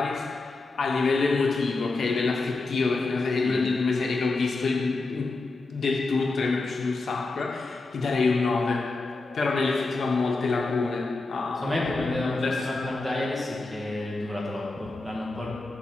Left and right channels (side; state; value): right; quieter; 3.4 dB